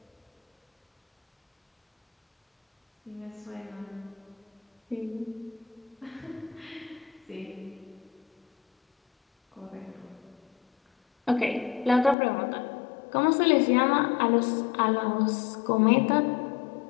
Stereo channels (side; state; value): right; drops out; at 12.2 s